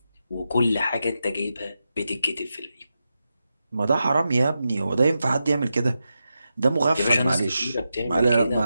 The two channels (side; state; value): both; inverted; correlation -0.89